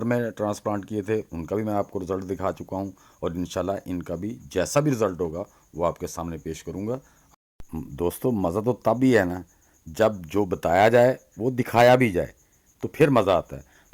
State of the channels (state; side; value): identical; both; correlation 1.00